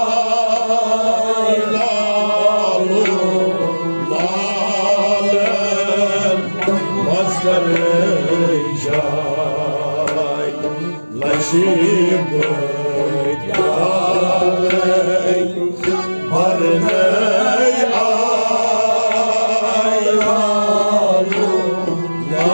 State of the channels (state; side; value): inverted; both; correlation -1.00